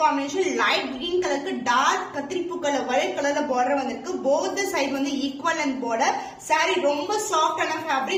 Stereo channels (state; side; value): identical; both; correlation 1.00